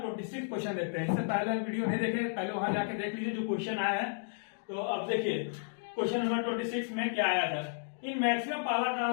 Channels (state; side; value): silent; right; digital silence